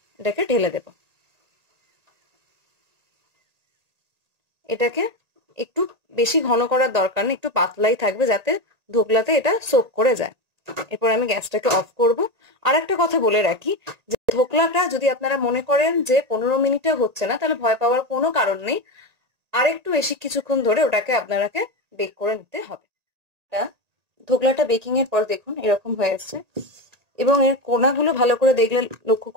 এটাকে ঢেলে দেব। এটাকে একটু বেশি ঘন করার দরকার নেই, একটু পাতলাই থাকবে যাতে ধোকলাতে এটা সোক করে যায়। এরপর আমি গ্যাসটাকে অফ করব। আর একটা কথা বলে রাখি যে ধোকলাটা যদি আপনারা মনে করেন যে 15 মিনিটে হচ্ছে না, তাহলে ভয় পাওয়ার কোনো কারণ নেই। আরেকটু বেশি কিছুক্ষণ ধরে ওটাকে আপনারাকে বেক করে নিতে হবে। ধোকলাটা বেকিং এর পর দেখুন এরকম হয়ে আসছে, এবং এর কোনাগুলো ভালো করে দেখলে লক্ষ্য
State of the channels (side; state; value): left; late; 1.8 ms